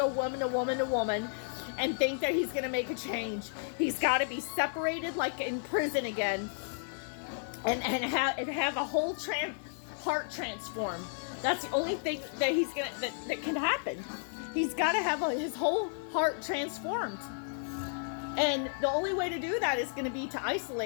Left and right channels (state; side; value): silent; right; digital silence